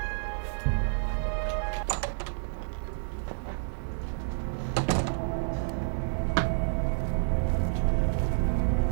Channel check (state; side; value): silent; left; digital silence